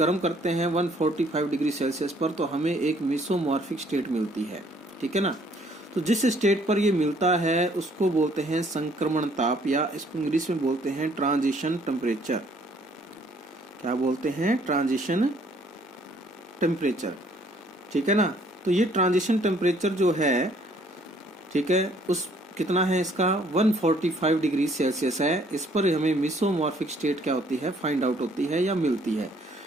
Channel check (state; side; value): normal; both; correlation 0.62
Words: करते हैं 145 डिग्री सेल्सियस पर, तो हमें एक मीसोमॉर्फिक स्टेट मिलती है। ठीक है ना। तो जिस स्टेट पर ये मिलता है उसको बोलते हैं संक्रमण ताप, या इसको इंग्लिश में बोलते हैं ट्रांजिशन टेम्परेचर। क्या बोलते हैं? Transition temperature. ठीक है ना। तो ये ट्रांजिशन टेम्परेचर जो है, ठीक है, उस कितना है इसका 145 डिग्री सेल्सियस है। इस पर हमें मीसोमॉर्फिक स्टेट क्या होती है फाइंड आउट होती है या मिलती है।